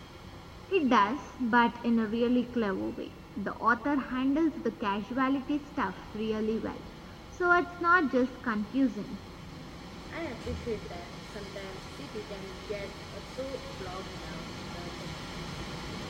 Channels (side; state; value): both; identical; correlation 1.00